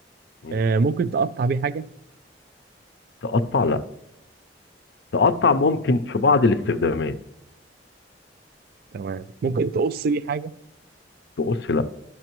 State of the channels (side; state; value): both; normal; correlation 0.12